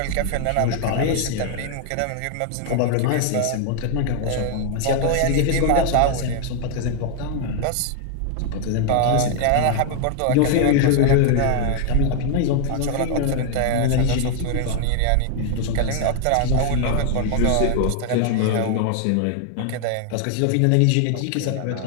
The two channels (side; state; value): both; different; correlation 0.00